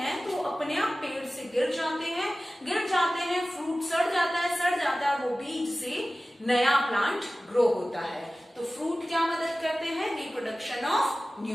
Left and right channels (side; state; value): both; normal; correlation 0.96